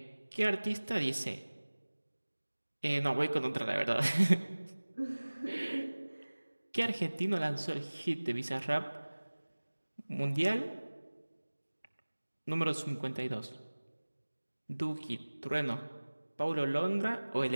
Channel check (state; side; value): inverted; both; correlation -1.00